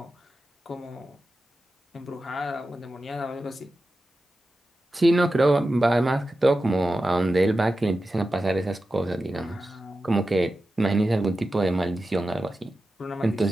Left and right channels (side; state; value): both; normal; correlation 0.93